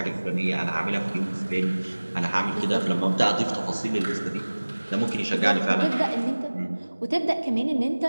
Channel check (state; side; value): inverted; both; correlation -1.00